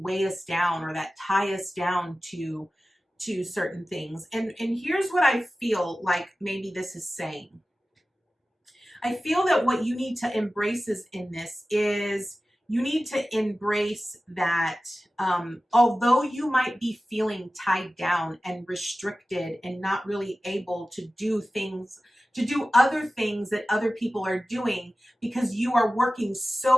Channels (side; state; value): both; normal; correlation 0.96